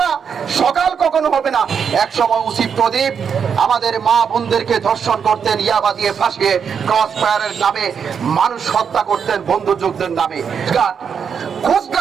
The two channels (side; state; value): left; quieter; 6.9 dB